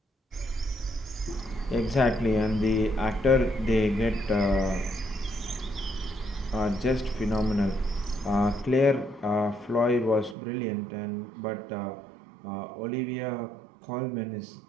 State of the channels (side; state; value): left; drops out; at 10.4 s